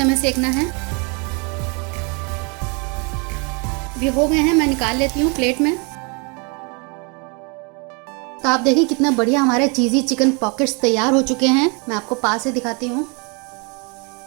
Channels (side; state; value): left; quieter; 33.0 dB